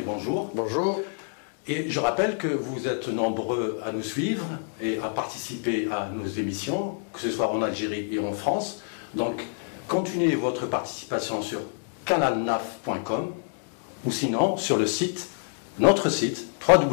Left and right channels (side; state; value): right; silent; digital silence